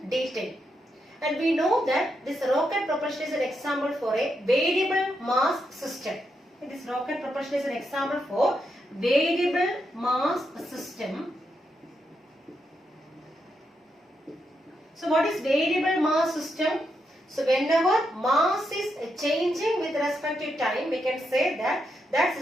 detail. And we know that this rocket propulsion is an example for a variable mass system. This rocket propulsion is an example for variable mass system. So what is variable mass system? So whenever mass is changing with respect to time, we can say that that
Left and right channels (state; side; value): normal; both; correlation 0.82